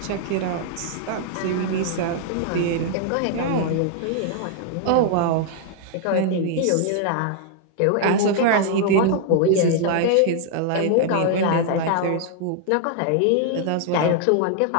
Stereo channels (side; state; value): both; different; correlation 0.00